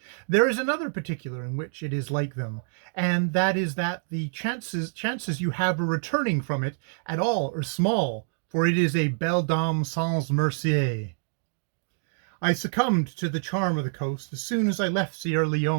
there is another particular in which it is like them, and that is that the chances you have of returning from it at all are small, for it is a belle dame sans merci. I succumbed to the charm of the coast as soon as I left Sierra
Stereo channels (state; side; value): silent; left; digital silence